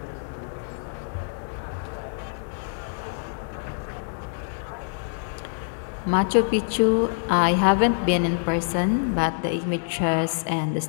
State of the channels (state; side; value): silent; right; digital silence